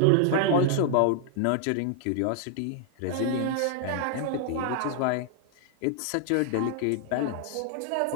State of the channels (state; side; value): different; both; correlation 0.00